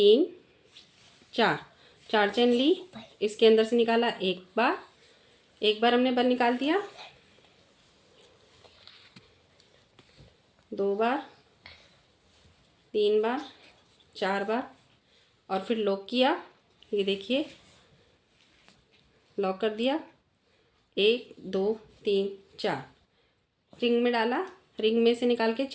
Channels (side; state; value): both; identical; correlation 1.00